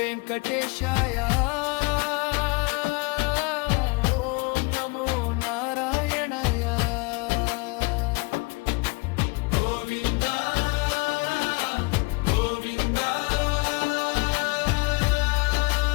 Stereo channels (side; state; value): right; quieter; 28.1 dB